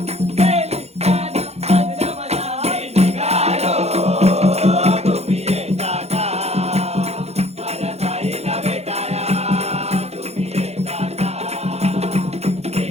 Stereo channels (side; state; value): left; late; 0.31 ms